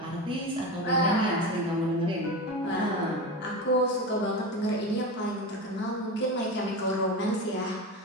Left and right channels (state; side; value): normal; both; correlation 0.23